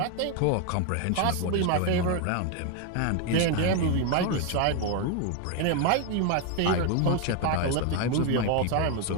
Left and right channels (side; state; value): both; different; correlation 0.01